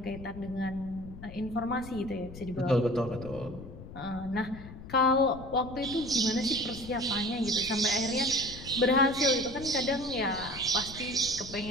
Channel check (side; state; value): left; noise; rumble, 14 dB below the sound